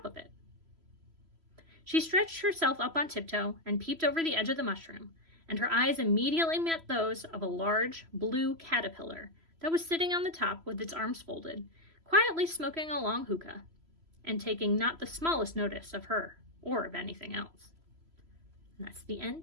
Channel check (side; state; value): left; late; 3.0 ms